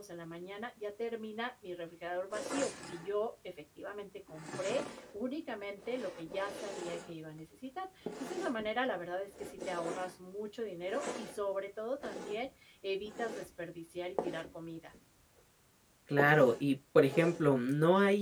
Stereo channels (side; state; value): both; identical; correlation 1.00